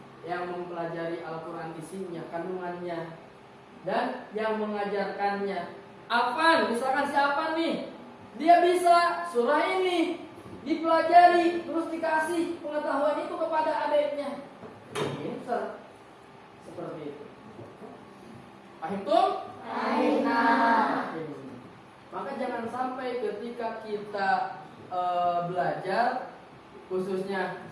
yang mempelajari Al-Quran isinya, kandungannya, dan yang mengajarkannya. Afan, misalkan si Afan nih, dia bisa surah ini, dipelajari, terus dikasih pengetahuan itu kepada adiknya. Pinter. Seperti itu. Paham tuh? Maka jangan sampai ketika kita belajar, khususnya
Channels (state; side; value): identical; both; correlation 1.00